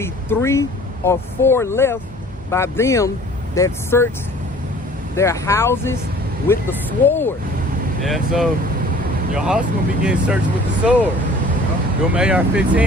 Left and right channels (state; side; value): normal; both; correlation 0.50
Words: 3 or 4 left by them that search their houses with the sword. Yeah, so your house gonna be getting searched with the sword. Them